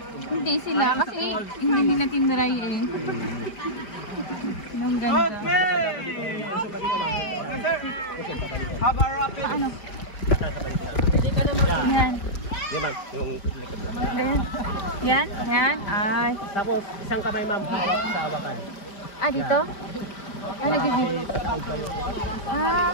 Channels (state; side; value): late; right; 5.0 ms